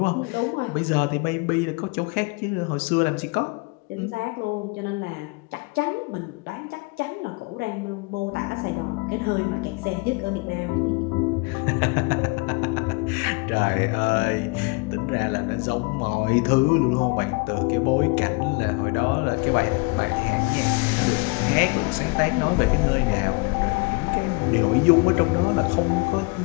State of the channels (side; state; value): right; quieter; 28.5 dB